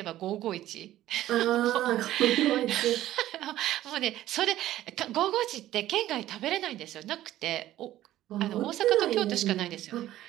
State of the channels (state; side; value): quieter; left; 14.0 dB